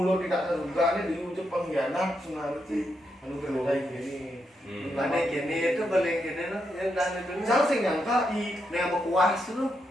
tidak terduga ini diucap pengkhianat sebenarnya sih anu kayak gini. Mana gini itu paling gini loh yang dan itu. Saya sih nyangka i yang berkuas tuh.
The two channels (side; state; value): both; normal; correlation 0.82